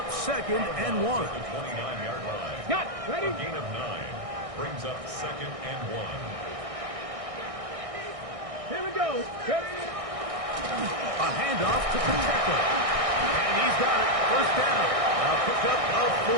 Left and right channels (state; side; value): late; left; 1.6 ms